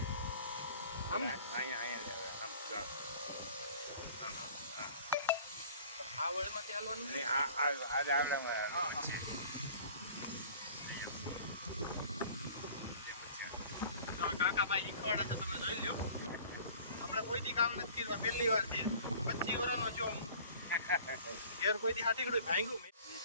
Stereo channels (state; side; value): inverted; both; correlation -0.47